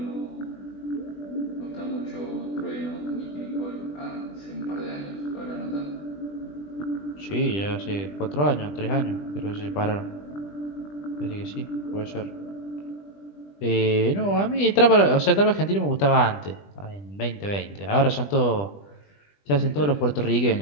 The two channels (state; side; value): late; right; 20 ms